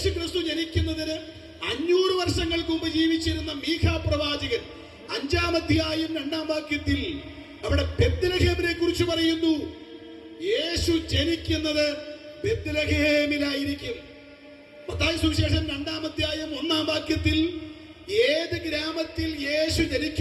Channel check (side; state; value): both; identical; correlation 1.00